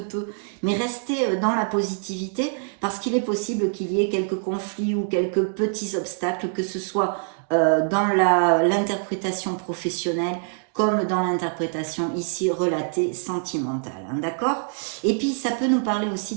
peu. Mais restez dans la positivité, parce qu'il est possible qu'il y ait quelques conflits ou quelques petits obstacles, que ce soit dans l'interprétation professionnelle, comme dans l'interprétation ici relatée sentimentale, hein, d'accord? Et puis ça peut nous parler aussi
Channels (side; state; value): left; silent; 62 dB below the other